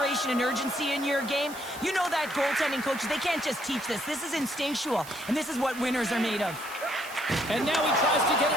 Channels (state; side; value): noise; right; hiss, 16 dB below the sound